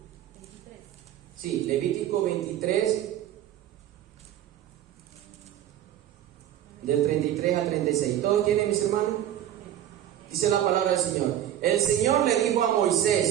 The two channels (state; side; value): quieter; left; 11.6 dB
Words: Sí, Levítico 23. Del 33 al 36. ¿Todos tienen, mis hermanos? Dice la palabra del Señor. El Señor le dijo a